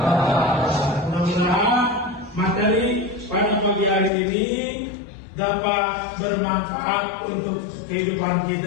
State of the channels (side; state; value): right; drops out; at 4.1 s